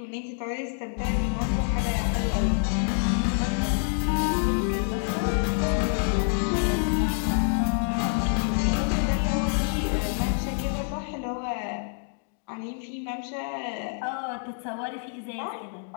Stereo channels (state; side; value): silent; right; 60 dB below the other